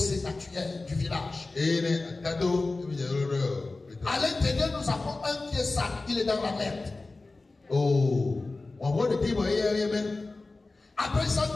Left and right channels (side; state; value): right; quieter; 3.4 dB